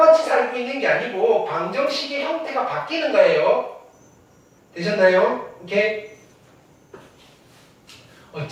살고 있는 게 아니고 방정식의 형태가 바뀌는 거예요. 되셨나요? 오케이?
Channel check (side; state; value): both; identical; correlation 1.00